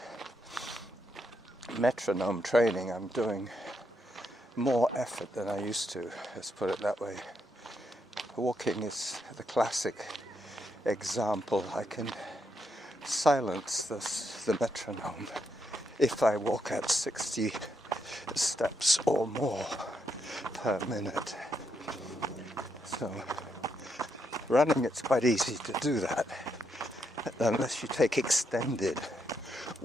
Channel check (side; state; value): both; normal; correlation 0.79